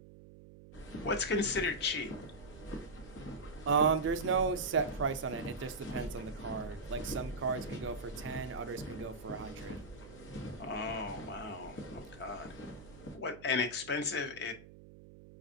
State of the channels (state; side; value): noise; right; hum, 18 dB below the sound